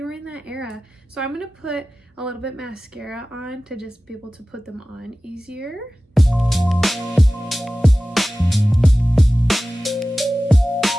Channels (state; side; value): normal; both; correlation 0.96